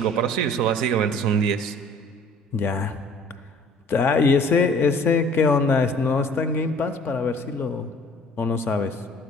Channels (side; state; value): both; normal; correlation 0.52